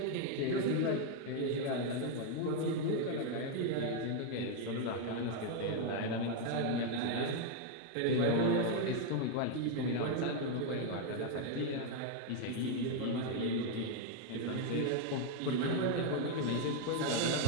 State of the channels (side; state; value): both; different; correlation 0.01